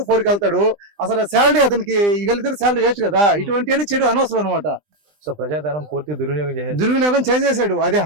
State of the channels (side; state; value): left; late; 20 ms